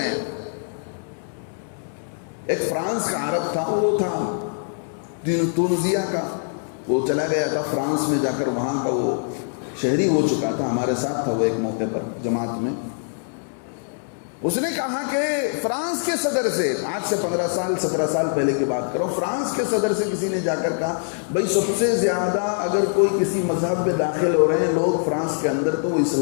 ہیں۔ ایک فرانس کا عرب تھا، وہ تھا تونسیہ کا، وہ چلا گیا تھا فرانس میں، جا کر وہاں کا وہ شہری ہو چکا تھا، ہمارے ساتھ تھا وہ ایک موقع پر جماعت میں۔ اس نے کہا کہ فرانس کے صدر سے، آج سے 15 سال 17 سال پہلے کی بات کروں، فرانس کے صدر سے کسی نے جا کر کہا بھئی سب سے زیادہ اگر کوئی کسی مذہب میں داخل ہو رہے ہیں لوگ فرانس کے اندر تو وہ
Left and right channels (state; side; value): silent; right; digital silence